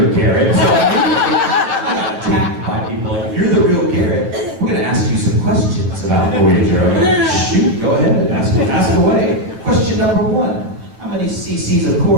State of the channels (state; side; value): late; left; 8.8 ms